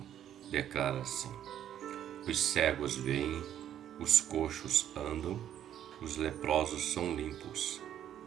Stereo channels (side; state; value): left; quieter; 10.6 dB